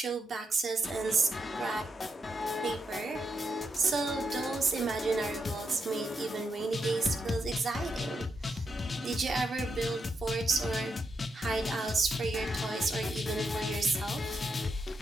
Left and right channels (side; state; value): both; normal; correlation 0.82